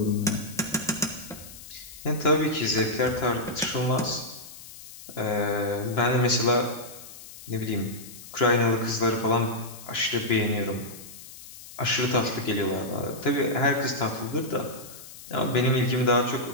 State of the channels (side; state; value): left; noise; hiss, 16 dB below the sound